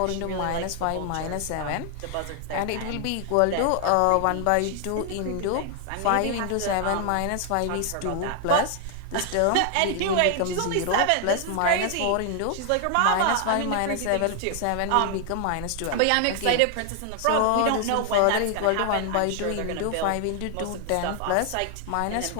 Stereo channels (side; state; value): both; different; correlation 0.00